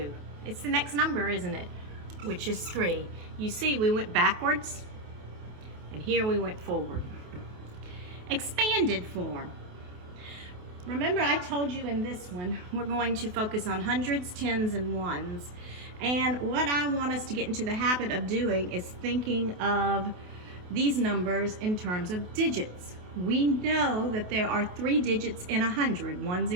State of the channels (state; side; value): late; left; 28 ms